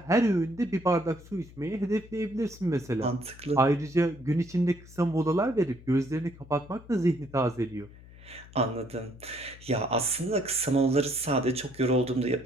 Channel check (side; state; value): left; noise; hum, 20 dB below the sound